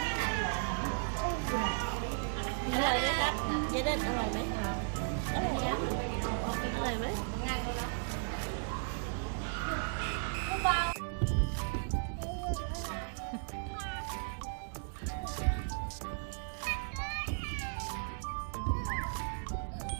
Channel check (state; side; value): silent; left; 54 dB below the other